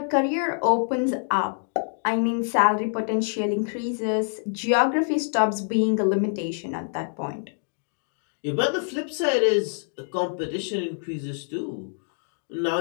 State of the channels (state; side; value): silent; right; digital silence